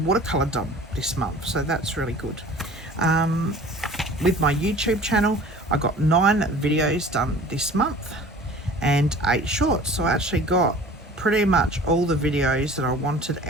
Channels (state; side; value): normal; both; correlation 0.44